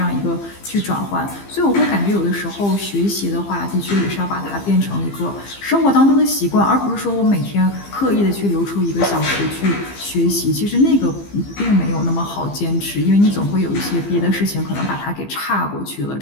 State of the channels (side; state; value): right; late; 15 ms